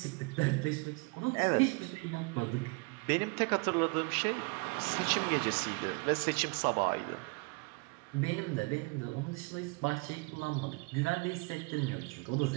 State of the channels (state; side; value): quieter; left; 29.1 dB